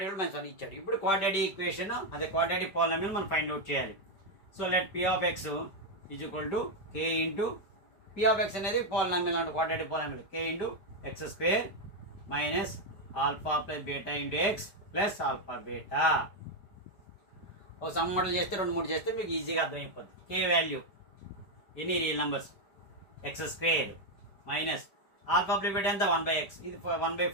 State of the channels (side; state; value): right; late; 5.1 ms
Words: కూడా -1 ఇచ్చాడు. ఇప్పుడు క్వాడ్రాటిక్ ఈక్వేషన్ అదే క్వాడ్రాటిక్ పాలినామియల్ మనం ఫైండ్ అవుట్ చేయాలి. So let p of x is equal to k into p of x అనేది పాలినామియల్ అంటే quadratic polynomial k into x square minus alpha plus beta into x plus alpha beta. ఒక some model చేస్తే 2-3 చేస్తే మీకు ఈజీగా అర్థమైపోతుంది. k value ఎన్ని real numbers X square minus alpha plus beta ఎంత 1/x, ఇది